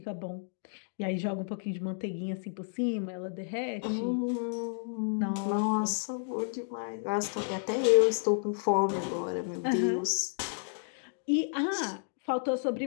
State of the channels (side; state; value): right; silent; digital silence